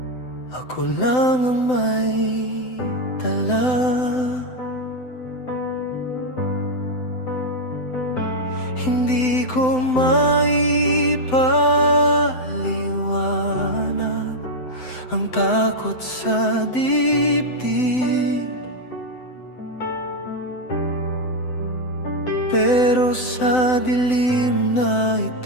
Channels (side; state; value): right; late; 7.9 ms